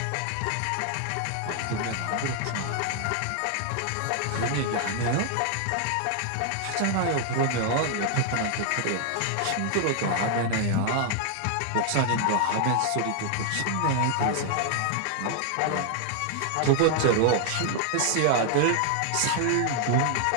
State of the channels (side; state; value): both; different; correlation 0.00